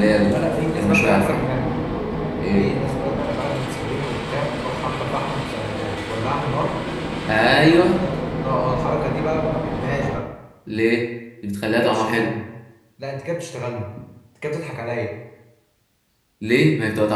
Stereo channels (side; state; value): both; identical; correlation 1.00